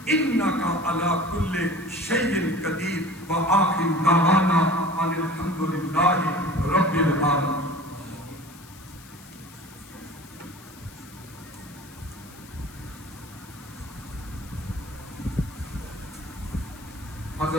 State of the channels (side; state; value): left; noise; hiss, 21 dB below the sound